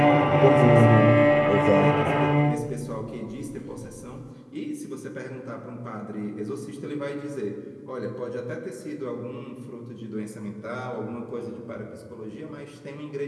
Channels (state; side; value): identical; both; correlation 1.00